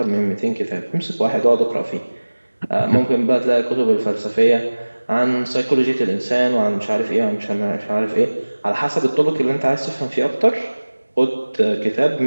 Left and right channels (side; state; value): both; inverted; correlation -1.00